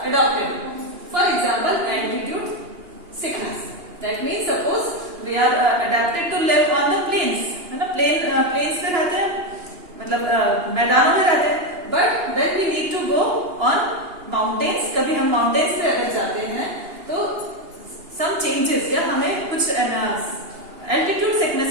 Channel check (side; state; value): left; late; 2.8 ms